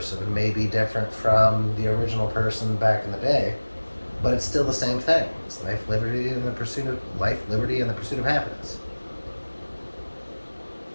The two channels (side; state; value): both; inverted; correlation -1.00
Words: may be different from the original person back in the day, but it's still the same thing. It's life, liberty, and the pursuit of life, liberty, and the pursuit of happiness.